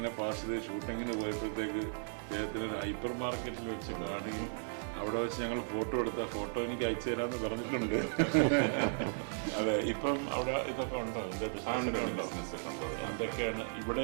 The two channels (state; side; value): silent; left; digital silence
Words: പാസ് ചെയ്ത് ഷൂട്ടിങ്ങിന് പോയപ്പോഴത്തേക്ക് അദ്ദേഹത്തിന് ഒരു ഹൈപ്പർ മാർക്കറ്റിൽ വെച്ച് കാണുകയും അവിടെ വെച്ച് ഞങ്ങൾ ഫോട്ടോ എടുത്ത ഫോട്ടോ എനിക്ക് അയച്ചു തരാമെന്ന് പറഞ്ഞിട്ടുണ്ട്. അതെ, ഇപ്പം അവിടെ ഇതൊക്കെ ഉണ്ടോ? എന്താ ബിസിനസ്സൊക്കെ ഉണ്ടോ? എന്തൊക്കെയാണ്?